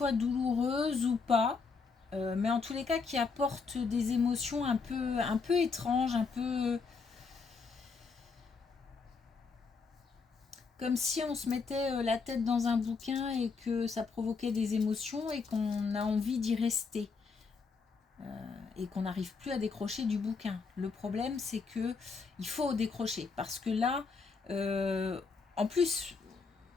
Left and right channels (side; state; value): right; quieter; 4.8 dB